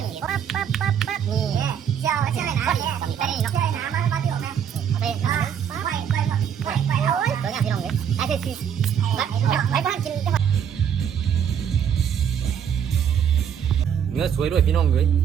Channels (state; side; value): quieter; left; 8.4 dB